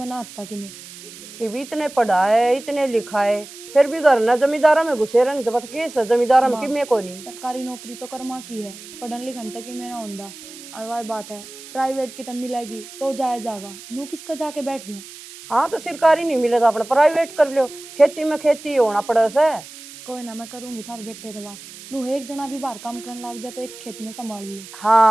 ना आता कि मैं ये भी इतने पढ़ा है इतने लिखा है फिर भी घर ना जमींदारा में घुसे रहने तो बस केस है जमींदारा में माँ, कि मैं को नहीं। सरकारी नौकरी तो कर्मा की है, पढ़न लिखन तक ही मेरा होंदा। और वह बात है प्राइवेट की तब मिलेगी तो जाया जागा, नू किसका जाके बैठ जाए। हाँ तो सरकारी नहीं मिले तो अपना प्राइवेट कर लो। खेती में खेती होना पड़े से। कोई ना मैं करूंगी थारे बेटे से बात। नू एक जना भी बाहर काम करने लग जाए तो एक खेत में संभाल ले।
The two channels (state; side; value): noise; right; hiss, 16 dB below the sound